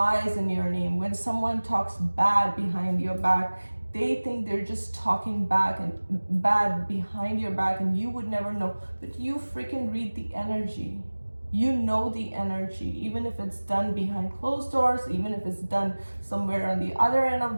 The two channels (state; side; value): inverted; both; correlation -1.00